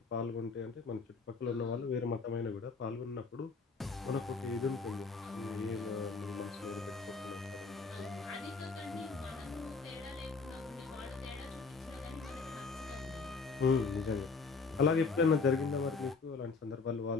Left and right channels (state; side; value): quieter; right; 4.5 dB